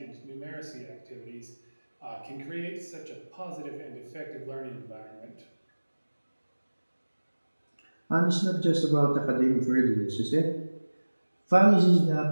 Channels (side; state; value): both; inverted; correlation -1.00